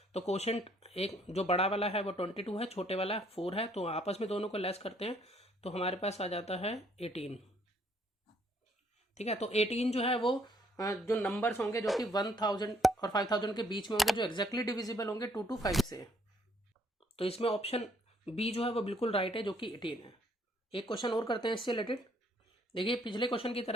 तो क्वोशंट एक जो बड़ा वाला है वो 22 है, छोटे वाला 4 है, तो आपस में दोनों को लेस करते हैं तो हमारे पास आ जाता है 18, ठीक है। तो 18 जो है वो जो नंबर्स होंगे जो कि 1000 और 5000 के बीच में होंगे, जो एग्जैक्टली डिविजिबल होंगे 2 to 5 से। तो इसमें ऑप्शन बी जो है वो बिल्कुल राइट है, जो कि 18 है। एक क्वेश्चन और करते हैं इससे रिलेटेड। देखिए पिछले क्वेश्चन की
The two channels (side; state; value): both; normal; correlation 0.66